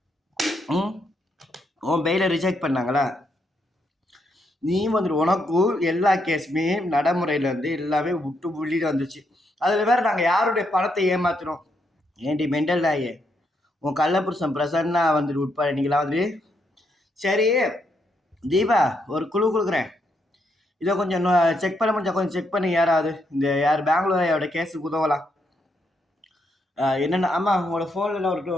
உன் பெயில ரிஜெக்ட் பண்ணாங்களா? நீ வந்துட்டு உனக்கும் எல்லா கேஸுமே நடைமுறையில் வந்து எல்லாமே விட்டு புள்ளிட்டு வந்துச்சு. அதில் வேற நாங்கள் யாருடைய பணத்தை ஏமாத்தினோம்? ஏண்டி மெண்டல் ஆயே, உன் கள்ளப்புருஷன் பிரசன்னா வந்துட்டு உட்பட நீங்களா வந்துட்டு. சரி தீபா, ஒரு குழு கொடுக்குறேன், இதை கொஞ்சம் செக் பண்ண முடிஞ்சா கொஞ்சம் செக் பண்ணி. யாராவது இந்த பெங்களூரோட கேஸுக்கு உதவலாம். என்னென்ன? ஆமாம், உங்களோட ஃபோனில்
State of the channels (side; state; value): both; normal; correlation 0.78